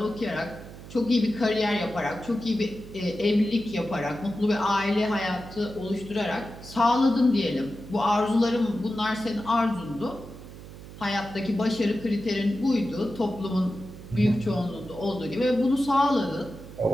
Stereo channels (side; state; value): right; noise; hum, 15 dB below the sound